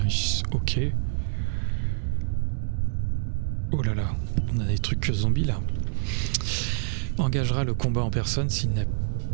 Ok. Oh là là, on a des trucs zombies là. Engagera le combat en personne s'il n'a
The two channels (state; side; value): silent; left; 59 dB below the other